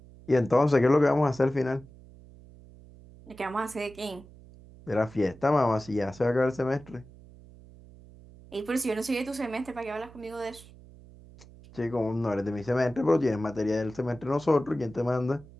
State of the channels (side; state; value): right; noise; hum, 21 dB below the sound